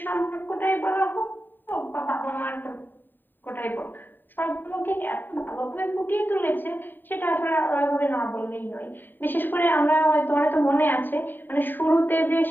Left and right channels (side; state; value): right; late; 0.092 ms